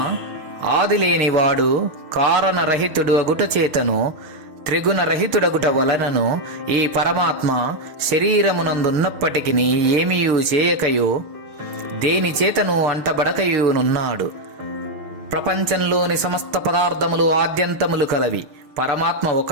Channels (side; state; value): left; late; 6.5 ms